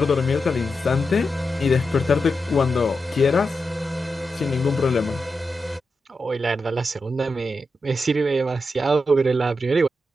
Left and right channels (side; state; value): both; normal; correlation 0.88